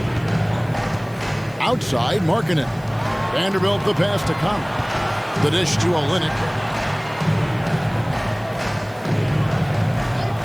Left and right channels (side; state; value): right; noise; hiss, 27 dB below the sound